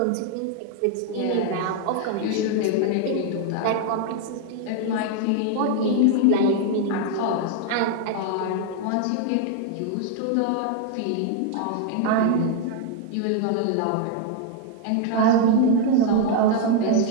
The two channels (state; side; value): different; both; correlation 0.00